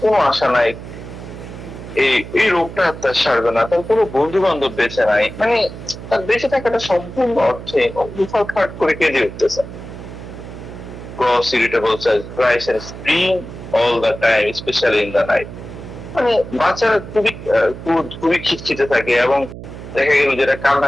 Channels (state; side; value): noise; right; hum, 12 dB below the sound